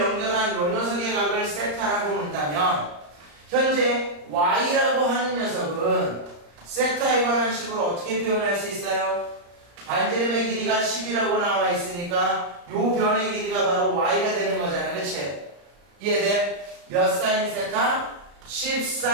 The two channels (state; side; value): late; left; 35 ms